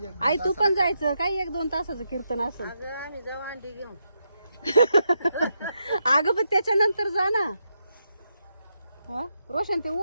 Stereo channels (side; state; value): both; inverted; correlation -0.83